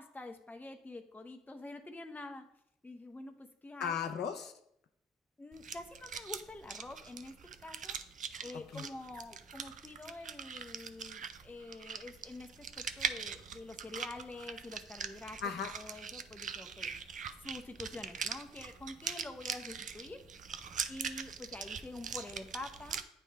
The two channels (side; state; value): both; normal; correlation 0.50